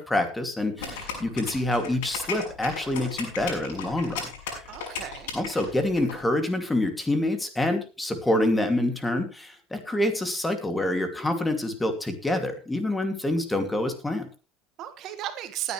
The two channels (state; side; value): normal; both; correlation 0.75